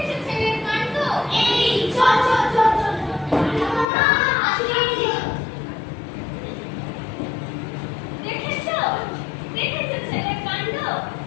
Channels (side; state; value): right; drops out; at 3.9 s